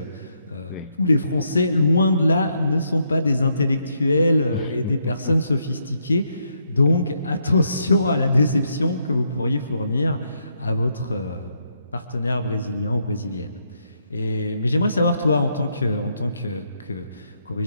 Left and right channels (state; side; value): inverted; both; correlation -0.76